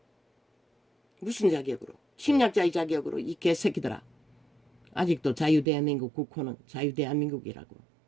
무슨 자격으로? 침략자의 자격으로 이 개새끼들아. 아직도 자유대한민국 국호는 자유대한민국이라고.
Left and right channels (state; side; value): drops out; left; at 5.7 s